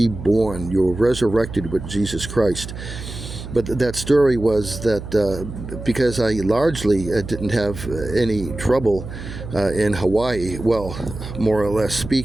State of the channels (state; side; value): noise; right; hum, 10 dB below the sound